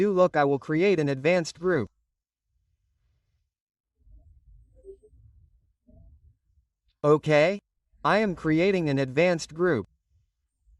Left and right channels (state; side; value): identical; both; correlation 1.00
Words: Look, I will create an advanced group. Okay? I am creating an advanced group.